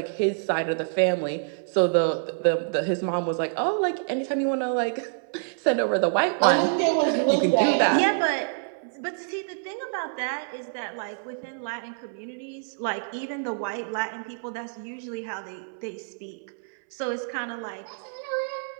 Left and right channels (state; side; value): silent; left; 60 dB below the other